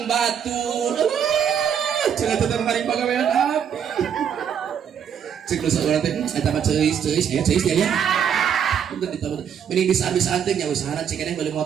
batur cenah teh mari pagawean api cek lu saurang teh eta mah ceus aya ceus ya untuk ditambah mending bisa teh nya usahana cek keneh beli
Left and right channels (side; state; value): left; quieter; 8.2 dB